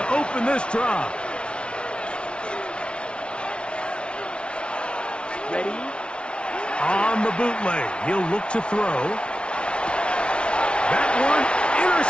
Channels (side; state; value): right; late; 0.058 ms